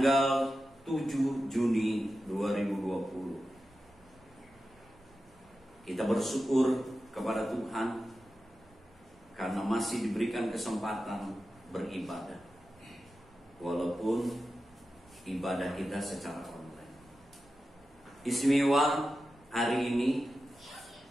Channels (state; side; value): noise; right; rumble, 29 dB below the sound